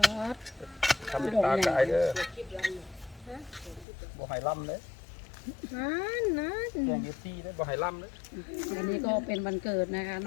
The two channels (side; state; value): right; drops out; at 3.9 s